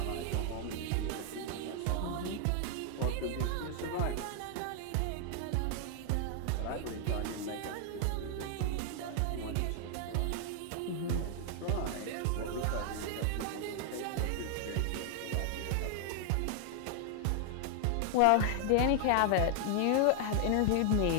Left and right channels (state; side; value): different; both; correlation 0.00